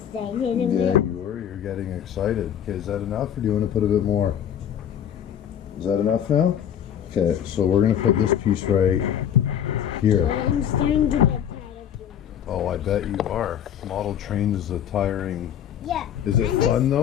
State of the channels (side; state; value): right; quieter; 9.5 dB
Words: Yeah, you were. You're getting excited. Okay, is that enough or do you want to put a bit more? Is that enough now? Okay, so we're going to put this piece right here. I'm starting to get tired of doing it. Oh, I bet you are. Model train is a tiring... Yeah. Is it fun